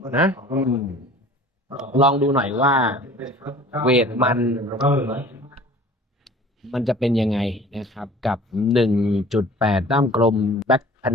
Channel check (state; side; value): normal; both; correlation 0.46